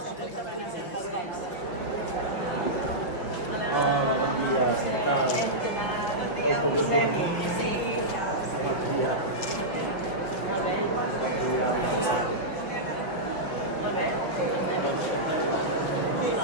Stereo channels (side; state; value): right; late; 5.5 ms